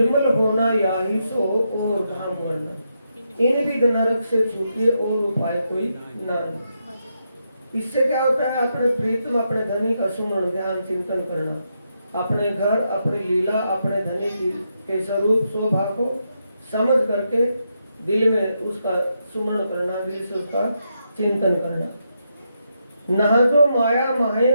होना याही सो और धाम वर्णन। इन भी नरक से छूटिए और उपाय कोई ना। इससे क्या होता है? अपने प्रीतम अपने धनी का सुमरण ध्यान चिंतन करना, अपने घर, अपनी लीला, अपने धनी के स्वरूप शोभा को समझ करके दिल में उसका सुमरण करना, दिल से उसका चिंतन करना। नहा जो माया माहे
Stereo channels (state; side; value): inverted; both; correlation -0.82